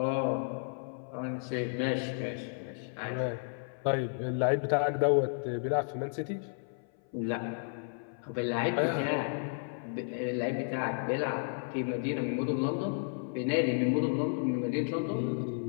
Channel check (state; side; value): silent; right; 56 dB below the other